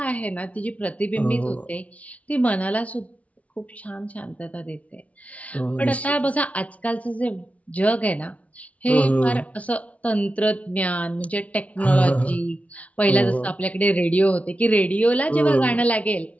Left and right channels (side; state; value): right; late; 0.067 ms